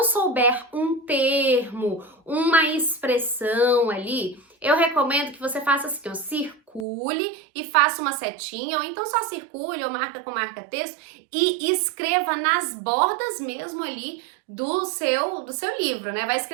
souber um termo, uma expressão ali, eu recomendo que você faça assim, circule e faça uma setinha, ou então só circule ou marca com marca-texto e escreva nas bordas mesmo ali do seu livro, né? Vai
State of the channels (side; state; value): left; drops out; at 6.9 s